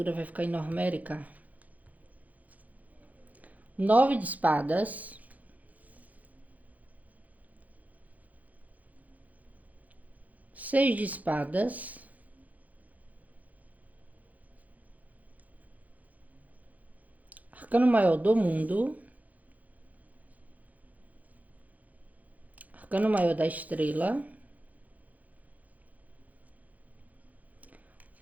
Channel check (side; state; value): left; late; 0.078 ms